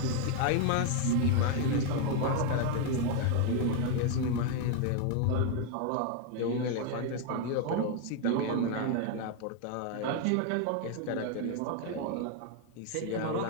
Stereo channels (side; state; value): both; different; correlation 0.01